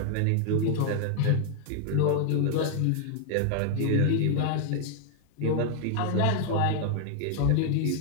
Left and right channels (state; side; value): different; both; correlation 0.00